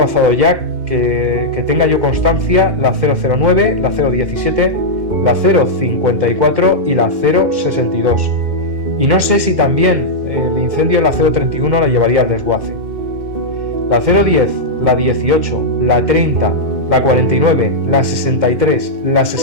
ya, que tenga yo constancia, la 009, la 017, la 054 y la 062. Y no sé si también el incendio en la 031 la llevaría al desguace. La 010, la 18, la 30, la 49, la 63, la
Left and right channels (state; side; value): late; left; 2.6 ms